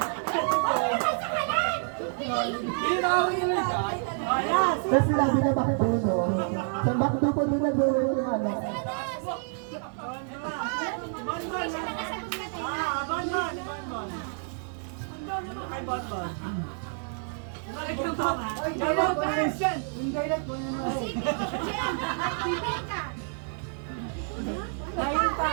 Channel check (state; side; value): silent; left; 57 dB below the other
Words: Tapos sinabi na Bakduno. Sa Bakdo po din nag-uwi yung ano.